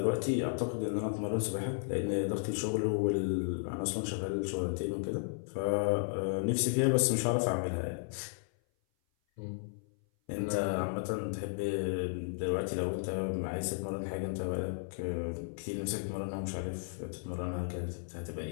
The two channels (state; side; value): silent; right; 55 dB below the other